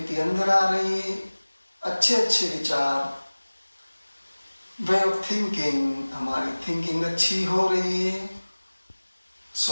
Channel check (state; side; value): inverted; both; correlation -1.00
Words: अंदर आ रही है, अच्छे अच्छे विचार, वे ऑफ थिंकिंग, हमारी थिंकिंग अच्छी हो रही है।